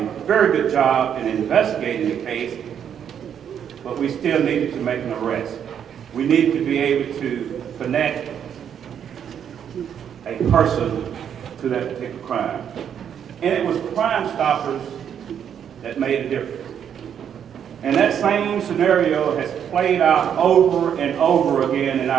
very good job in investigating the case, but we still needed to make an arrest. We needed to be able to connect a person to that particular crime. And it was Crimestoppers that made a difference. And that same scenario has played out over and over again in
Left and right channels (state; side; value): quieter; left; 8.6 dB